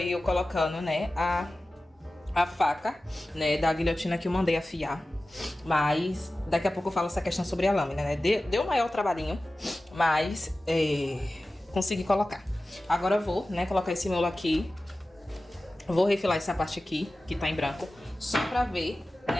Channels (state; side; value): normal; both; correlation 0.96